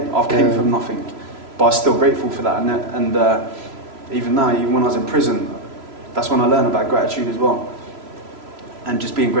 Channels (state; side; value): late; left; 3.0 ms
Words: I've came from nothing, but I was still grateful for that. And even now, even when I was in prison, that's when I learned about gratitude as well. And just being